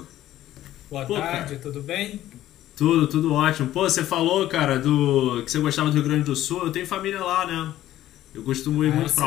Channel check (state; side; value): quieter; right; 13.6 dB